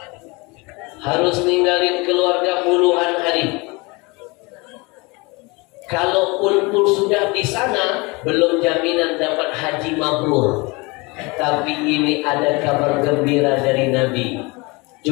harus ninggalin keluarga puluhan hari. Kalaupun sudah di sana, belum jaminan dapat haji mabrur. Tapi ini ada kabar gembira dari Nabi.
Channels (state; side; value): quieter; right; 26.3 dB